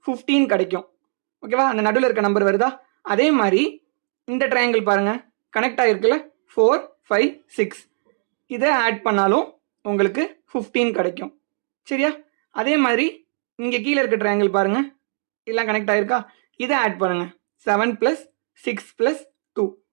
15 கிடைக்கும். ஓகேவா, அந்த நடுவில் இருக்க நம்பர் வருதா? அதே மாதிரி இந்த ட்ரையாங்கிள் பாருங்கள், கனெக்ட் ஆகிருக்குல்ல, 4 5 6 இதை ஆட் பண்ணாலும் உங்களுக்கு 15 கிடைக்கும். சரியா, அதே மாதிரி இங்கே கீழே இருக்க ட்ரையாங்கிள் பாருங்கள், எல்லாம் கனெக்ட் ஆகிருக்கா, இதை ஆட் பண்ணுங்கள். 7 + 6 + 2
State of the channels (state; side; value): silent; left; 65 dB below the other